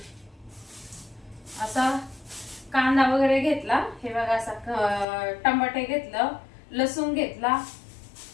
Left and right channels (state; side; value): drops out; right; at 5.1 s